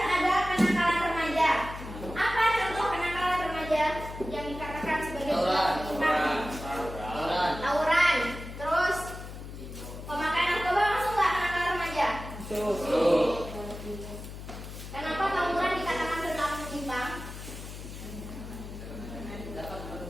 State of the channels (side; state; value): left; noise; hum, 11 dB below the sound